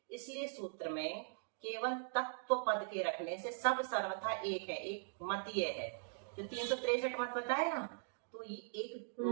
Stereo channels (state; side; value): silent; left; digital silence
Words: इसलिए सूत्र में केवल तत्व पद के रखने से सब सर्वथा एक है, एक मत ये है, जो 363 मत बताए ना, तो ये एक